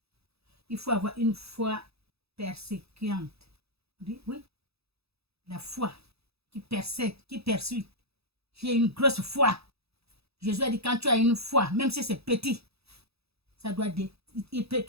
Il faut avoir une foi persécuante. Oui. La foi qui persécute, qui persuade. J'ai une grosse foi. Jésus a dit, quand tu as une foi, même si c'est petit, ça doit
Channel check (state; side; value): late; left; 0.78 ms